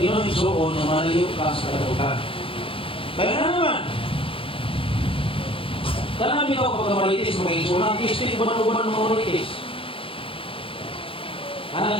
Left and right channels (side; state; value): right; late; 0.26 ms